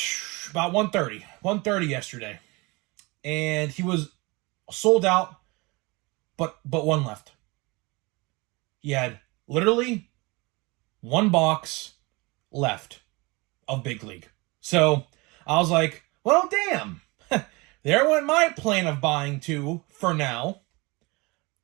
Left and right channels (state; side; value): quieter; left; 25.4 dB